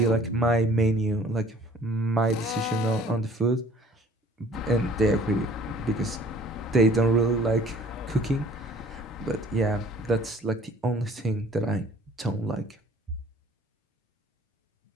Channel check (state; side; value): normal; both; correlation 0.53